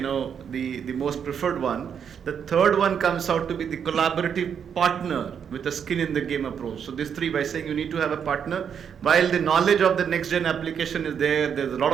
most preferred one. The third one comes out to be the collaborative partner with a skin in the game approach. So these three, by saying you need to have a partner, while the knowledge of the next gen application is there's a lot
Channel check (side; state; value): left; quieter; 7.6 dB